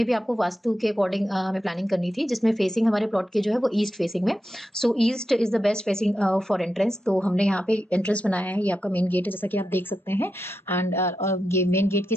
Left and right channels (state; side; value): normal; both; correlation 0.88